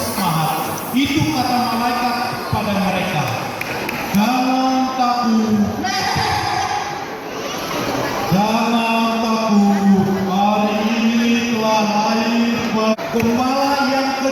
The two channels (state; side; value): identical; both; correlation 1.00